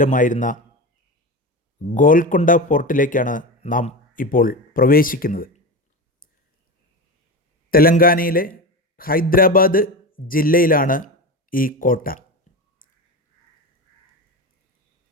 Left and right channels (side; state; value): both; normal; correlation 0.23